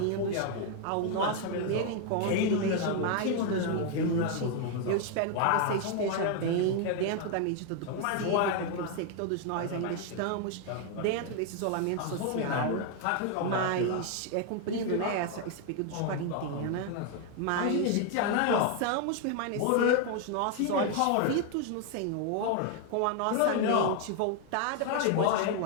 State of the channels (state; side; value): different; both; correlation 0.00